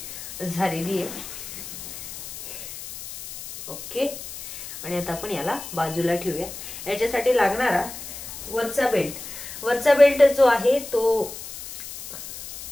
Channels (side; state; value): left; noise; hiss, 11 dB below the sound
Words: झालेली आहे. ओके. आणि आता आपण याला बाजूला ठेवूया. याच्यासाठी लागणारा वरचा बेल्ट जो आहे तो